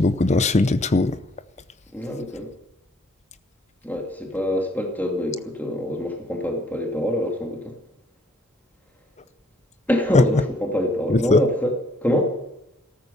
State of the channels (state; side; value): normal; both; correlation 0.64